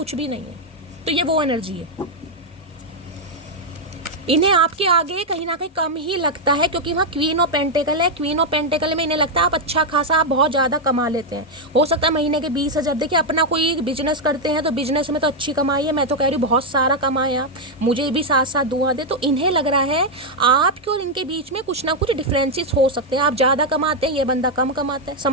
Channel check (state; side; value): normal; both; correlation 0.01